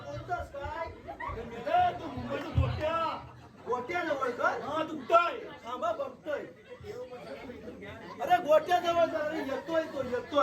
बोलतोस काय अरे मेल्या, तू मुंबईचा गोट्या जवळ कर हा तुटतोय थांबा बघतोय अरे गोट्या जवळ कर अरे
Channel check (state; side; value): identical; both; correlation 1.00